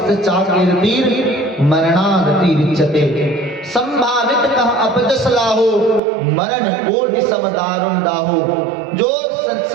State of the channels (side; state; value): left; drops out; at 6.0 s